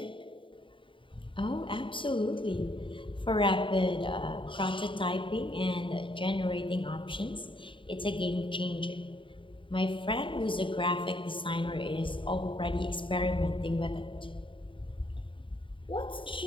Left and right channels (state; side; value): late; right; 0.25 ms